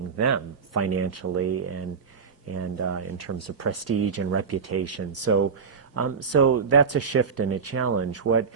them financially and in terms of prestige and reputation. So that's a shift and a challenge. What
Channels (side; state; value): left; quieter; 5.7 dB